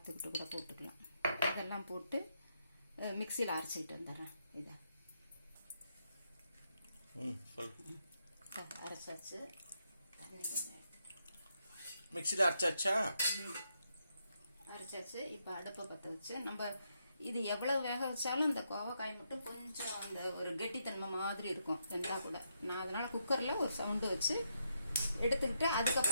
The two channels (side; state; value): both; inverted; correlation -0.78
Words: கூட போட்டுக்கலாம். இதெல்லாம் போட்டு மிக்சியில் அரைச்சிக்கிட்டு வந்துடுறேன். இதை அரைச்சாச்சு, மிக்சியில் அரைச்சாச்சு. இப்போ அடுப்பை பற்ற வச்சு நம்ம இது எவ்வளவு வேக வச்சாலும் இந்த கோவக்காய் மட்டும் கொஞ்சம் அந்த ஒரு கெட்டித்தன்மை மாதிரி இருக்கும் இருந்தால் கூட. நான் அதனால குக்கரில் ஒரு சவுண்டு வச்சு எடுத்துக்கிட்டு